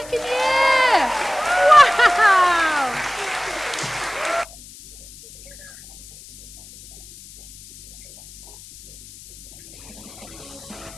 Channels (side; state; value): left; noise; hiss, 19 dB below the sound